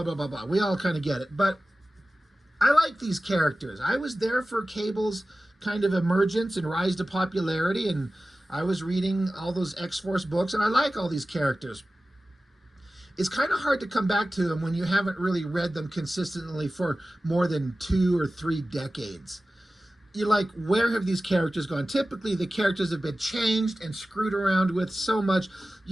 blah, blah, blah. We all kind of get it. But I like these characters. I was there for Cable's kind of emergence and rise to popularity, and I was reading all those X-Force books, and I like all these characters. It's kind of hard to come back to them when you haven't really read them consistently for more than 2 or 3 decades. You're like, where have these characters gone? Typically, the characters have been changed and screwed around with so much,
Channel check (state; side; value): normal; both; correlation 0.96